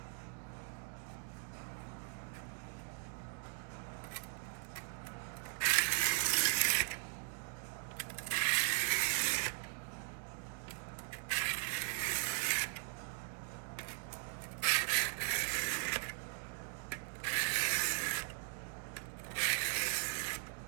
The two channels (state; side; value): silent; left; 51 dB below the other